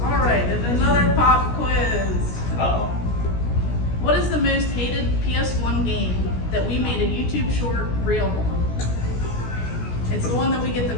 All right, and another pop quiz. Uh-oh. What is the most hated PS1 game that we made a YouTube short reel on? It's the one that we get the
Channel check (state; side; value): late; right; 17 ms